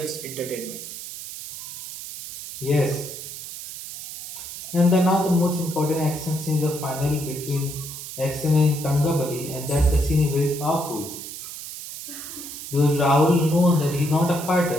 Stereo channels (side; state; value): right; noise; hiss, 10 dB below the sound